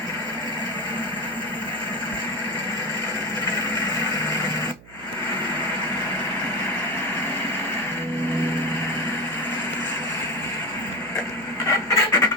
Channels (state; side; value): noise; right; hum, 21 dB below the sound